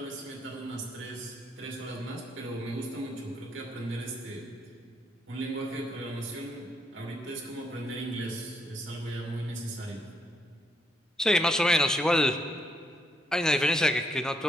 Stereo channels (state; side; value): normal; both; correlation 0.75